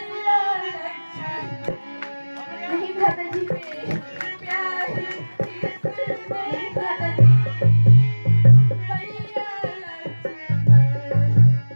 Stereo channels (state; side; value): inverted; both; correlation -1.00